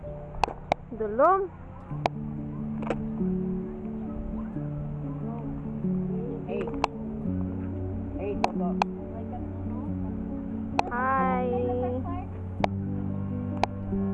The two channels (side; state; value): both; identical; correlation 1.00